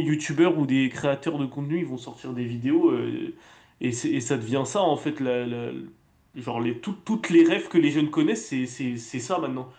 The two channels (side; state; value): both; identical; correlation 1.00